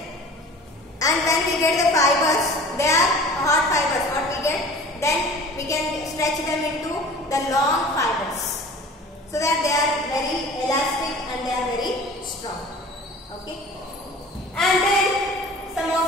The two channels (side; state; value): both; normal; correlation 0.43